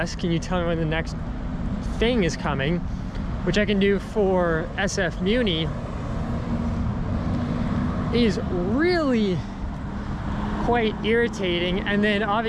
can you tell me when the next thing is coming? Which I can do for SF Muni, is really quite irritating. And then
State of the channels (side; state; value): both; identical; correlation 1.00